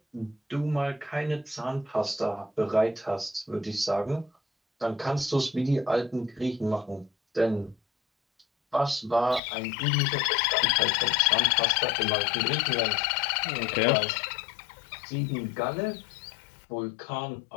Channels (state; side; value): drops out; right; at 9.4 s